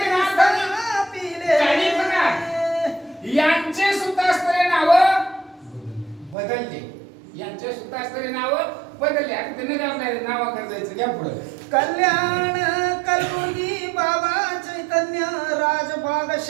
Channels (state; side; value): drops out; left; at 6.4 s